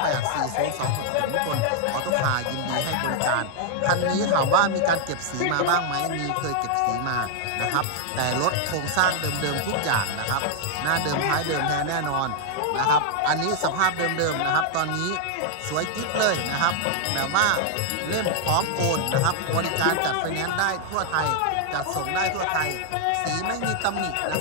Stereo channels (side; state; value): both; different; correlation 0.00